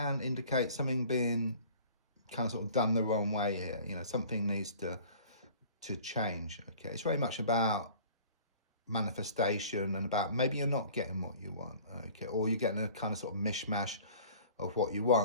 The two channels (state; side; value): inverted; both; correlation -0.47